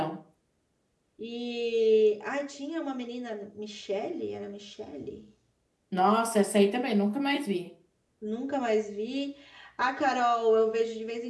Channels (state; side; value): identical; both; correlation 1.00